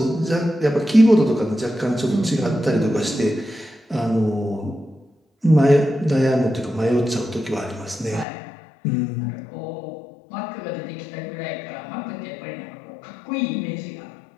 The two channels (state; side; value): drops out; right; at 8.2 s